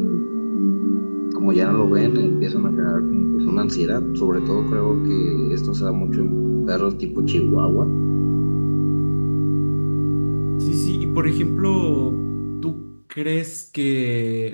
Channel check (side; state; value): both; inverted; correlation -1.00